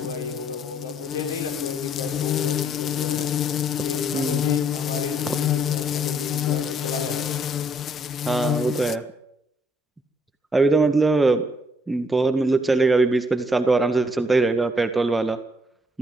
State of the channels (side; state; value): both; normal; correlation 0.67